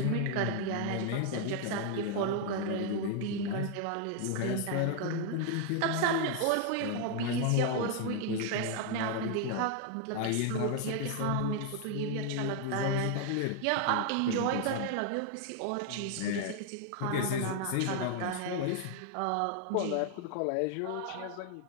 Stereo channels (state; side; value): different; both; correlation 0.00